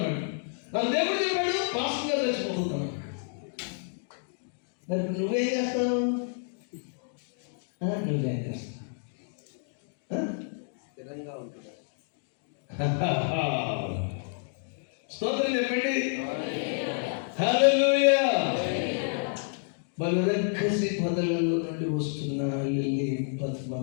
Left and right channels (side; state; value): right; silent; 58 dB below the other